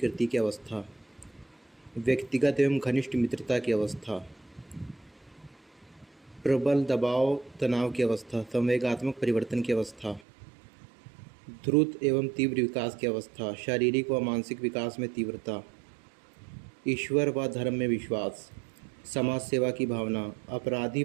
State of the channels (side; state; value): left; drops out; at 10.2 s